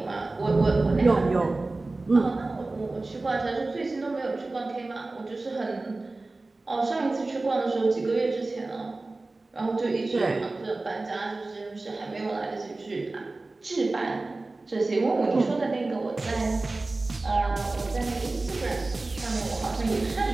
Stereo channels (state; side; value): quieter; left; 3.2 dB